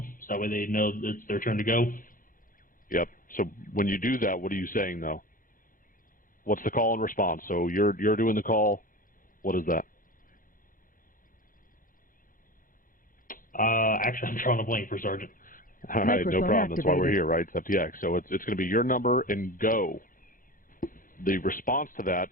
so that way they know that it's their turn to go. Yep. So when you do that, what are you saying though? What's the call and response? So you're doing the call. What is that? Actually, I'm drawing a blank, First Sergeant. All right, no problem. That's why we're here, right? It's FTX. So it's going to be your number and go. The response to that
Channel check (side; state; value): right; late; 0.40 ms